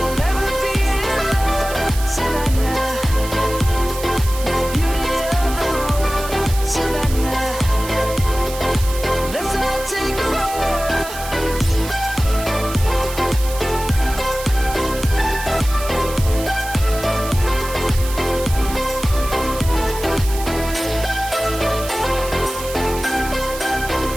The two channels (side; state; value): right; noise; hiss, 11 dB below the sound